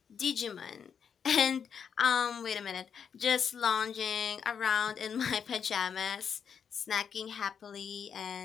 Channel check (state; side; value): quieter; right; 7.2 dB